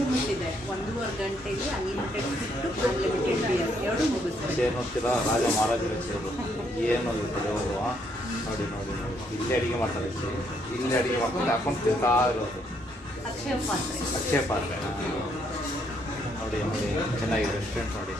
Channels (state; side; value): normal; both; correlation 0.72